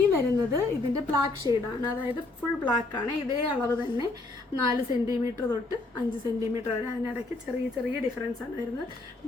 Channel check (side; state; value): right; quieter; 3.2 dB